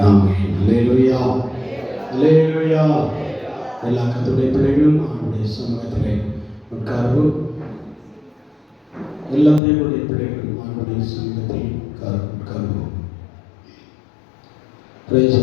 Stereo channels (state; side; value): drops out; right; at 9.6 s